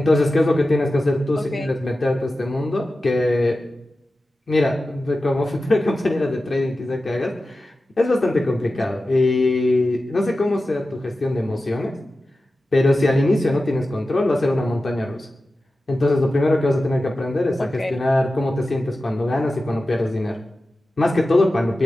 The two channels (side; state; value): both; normal; correlation 0.94